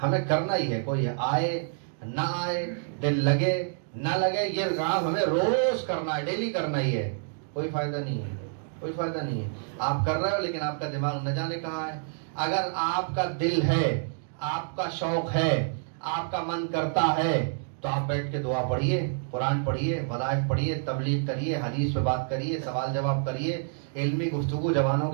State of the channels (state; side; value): silent; left; digital silence